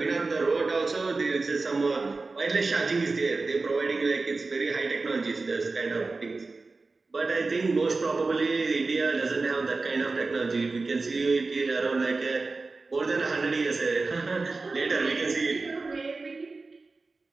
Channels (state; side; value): quieter; left; 3.8 dB